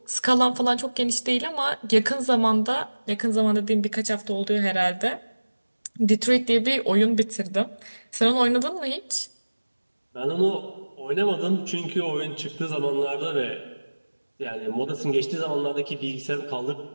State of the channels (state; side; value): inverted; both; correlation -1.00